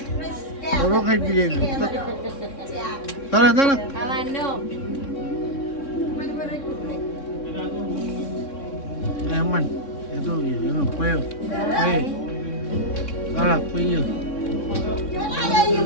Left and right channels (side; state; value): right; late; 3.6 ms